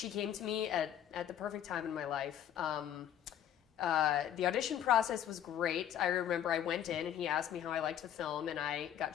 came to me at the perfect time in my life. The audition process was great. I remember I went in and he asked me how I liked the film, and I got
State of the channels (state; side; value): quieter; right; 10.3 dB